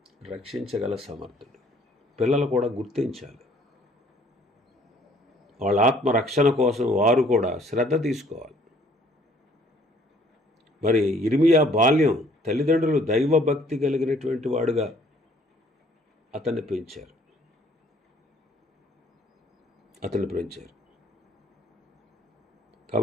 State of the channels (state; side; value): normal; both; correlation 0.59